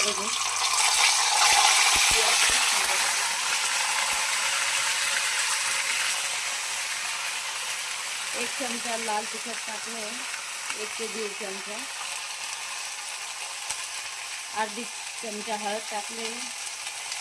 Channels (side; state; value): both; identical; correlation 1.00